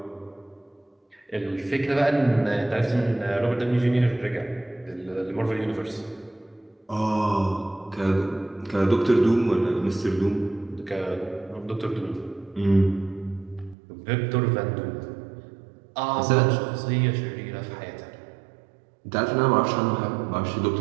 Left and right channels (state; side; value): drops out; left; at 13.8 s